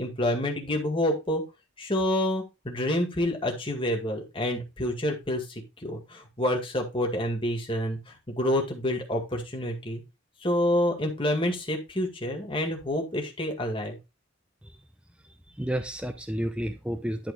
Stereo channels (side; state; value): both; normal; correlation 0.55